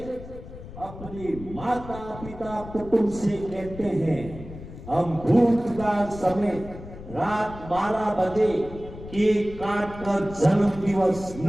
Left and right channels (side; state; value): left; noise; rumble, 14 dB below the sound